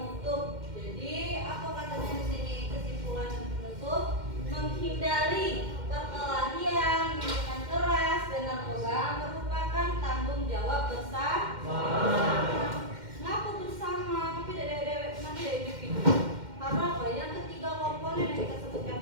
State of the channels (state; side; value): late; left; 2.1 ms